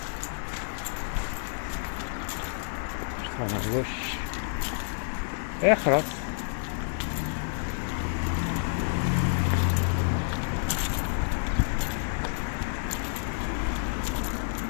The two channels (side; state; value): right; silent; digital silence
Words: Je tourne à gauche. Et خلاص.